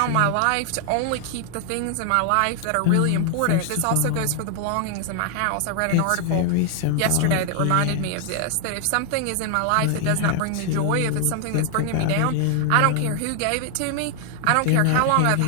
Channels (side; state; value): both; different; correlation 0.00